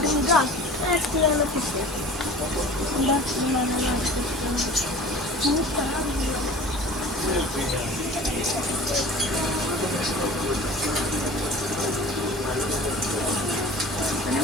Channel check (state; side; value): normal; both; correlation 0.41